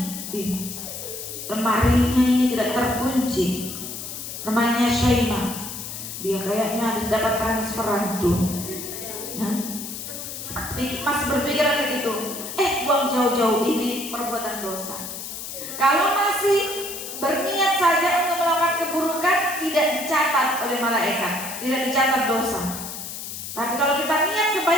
nih, lemarinya ini tidak terkunci, rumahnya Syaimah, dia kayaknya habis dapat transferan tuh, ya? Masih berpikiran begitu, buang jauh-jauh ini perbuatan dosa. Kalau masih berniat saja untuk melakukan keburukan, tidak dicatat oleh malaikat, tidak dicatat dosa. Tapi kalau kita niat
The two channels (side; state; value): left; noise; hiss, 8 dB below the sound